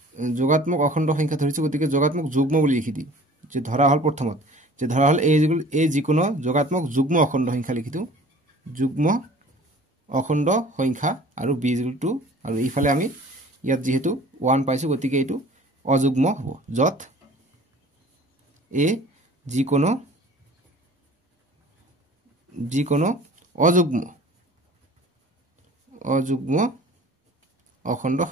যোগাত্মক অখণ্ড সংখ্যা ধৰিছো গতিকে যোগাত্মক যুগ্ম বুলি লিখি দিম যে ধৰা হল প্ৰথমত যে ধৰা হল a যিকোনো যোগাত্মক যুগ্ম অখণ্ড সংখ্যা লিখি দিও যুগ্ম অখণ্ড সংখ্যা আৰু b = 2 আৰু ইফালে আমি ইয়াত যেহেতু 1 পাইছো গতিকে এইটো অযুগ্ম হ'ব যত a যিকোনো অযুগ্ম অখণ্ড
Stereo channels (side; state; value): both; normal; correlation 0.47